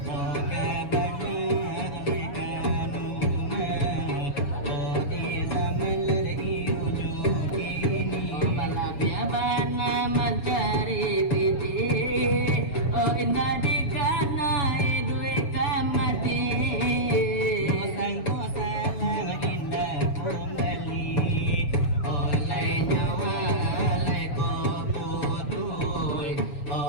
oh kabana alai kanuna oh di zaman ijo kini oh balabia bana mencari piti oh indah dikana idui kamati sangko salam indah kembali oleh nyawa oleh koputui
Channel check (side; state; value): right; late; 7.1 ms